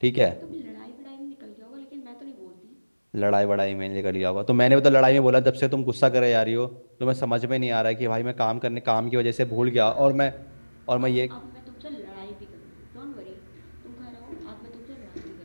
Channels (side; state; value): both; inverted; correlation -1.00